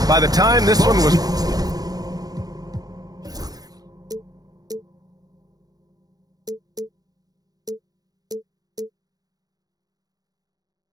By the time this one was...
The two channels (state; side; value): late; left; 0.18 ms